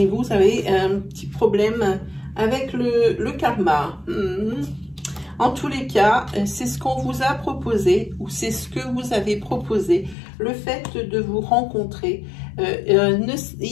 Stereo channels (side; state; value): right; drops out; at 10.2 s